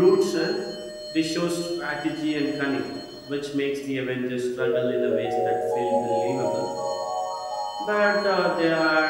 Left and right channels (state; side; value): identical; both; correlation 1.00